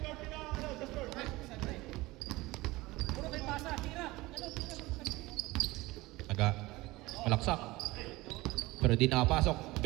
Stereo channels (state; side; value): quieter; left; 20.3 dB